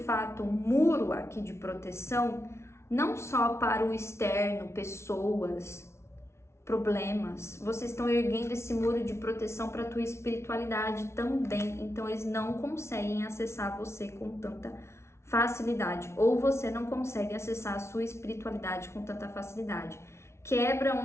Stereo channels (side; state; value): right; late; 0.13 ms